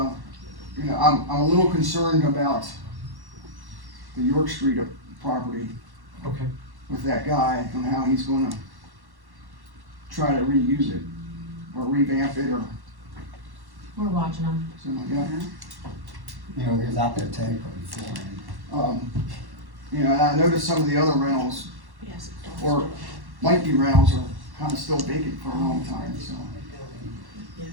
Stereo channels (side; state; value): left; late; 1.1 ms